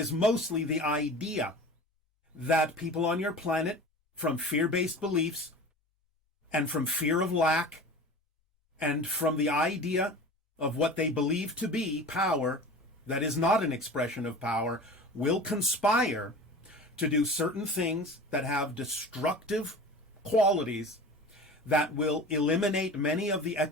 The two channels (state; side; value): normal; both; correlation 0.37